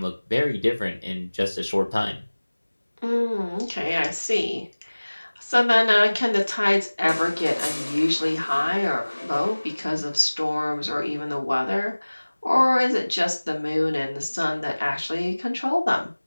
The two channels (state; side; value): inverted; both; correlation -1.00